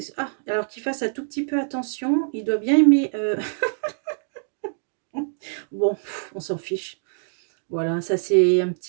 Alors qu'il fasse un tout petit peu attention, il doit bien aimer. Bon, on s'en fiche. Voilà, ça c'est un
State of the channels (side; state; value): left; silent; digital silence